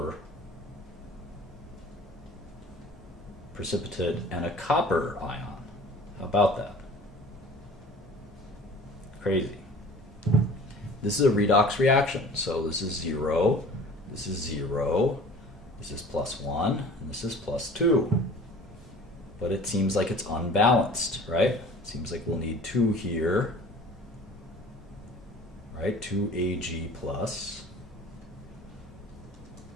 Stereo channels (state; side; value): normal; both; correlation 0.45